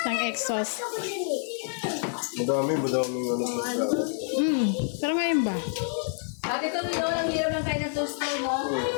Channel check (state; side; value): silent; right; digital silence